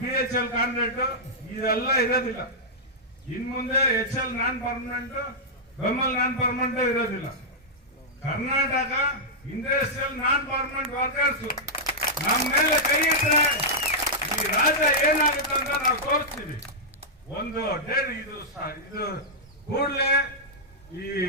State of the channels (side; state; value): both; normal; correlation -0.10